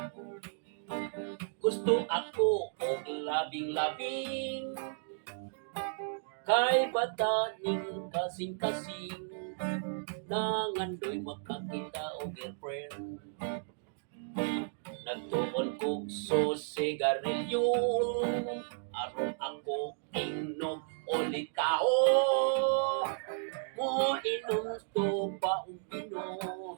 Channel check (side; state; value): left; silent; digital silence